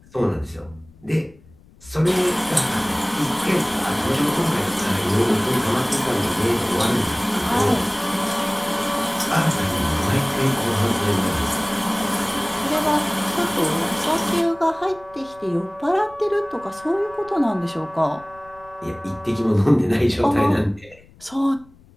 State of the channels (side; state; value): left; noise; rumble, 26 dB below the sound